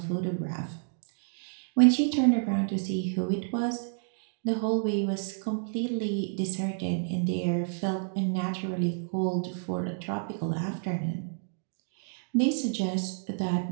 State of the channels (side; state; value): left; silent; digital silence